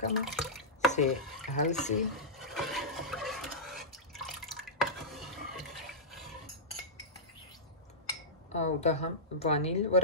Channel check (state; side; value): normal; both; correlation -0.17